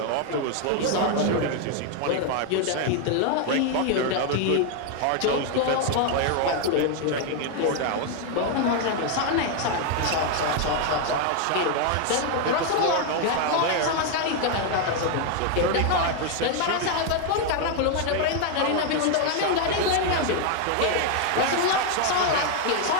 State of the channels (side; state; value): both; different; correlation 0.01